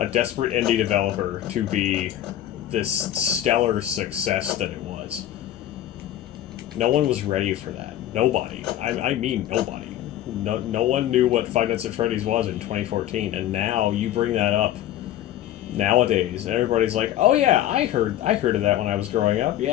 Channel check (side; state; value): right; quieter; 12.4 dB